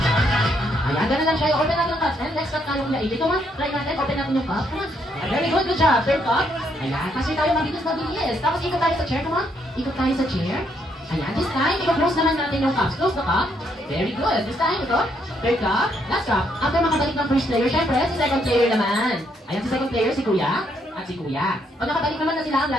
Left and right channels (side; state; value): both; normal; correlation 0.73